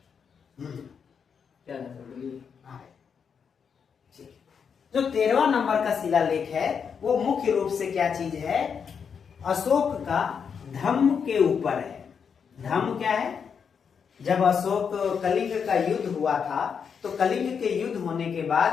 क्या है सर बोलिए। जो 13वां नंबर का शिलालेख है वो मुख्य रूप से क्या चीज है, अशोक का धम्म के ऊपर है। धम्म क्या है, जब अशोक कलिंग का युद्ध हुआ था तो कलिंग के युद्ध होने के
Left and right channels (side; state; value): right; quieter; 6.6 dB